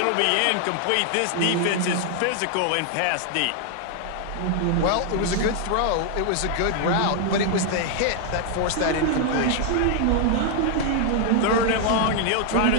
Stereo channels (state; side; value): different; both; correlation 0.00